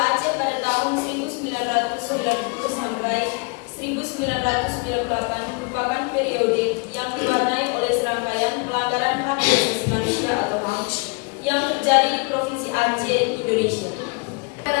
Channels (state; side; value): quieter; right; 32.0 dB